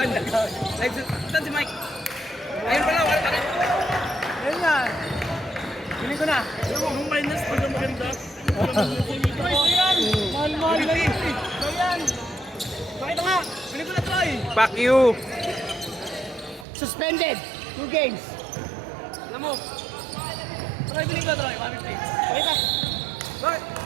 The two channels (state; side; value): drops out; left; at 16.7 s